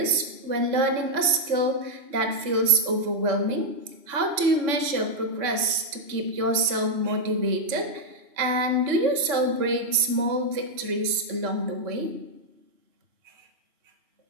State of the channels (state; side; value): late; left; 2.9 ms